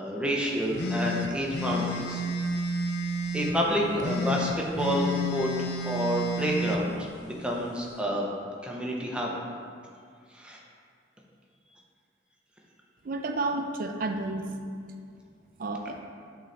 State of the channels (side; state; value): both; normal; correlation 0.51